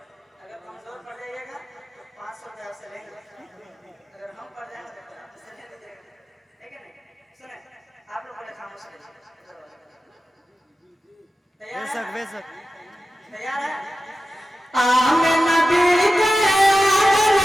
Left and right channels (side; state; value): both; normal; correlation 0.94